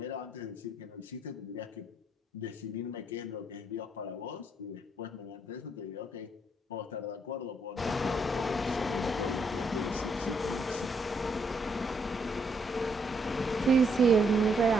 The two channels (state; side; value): normal; both; correlation 0.73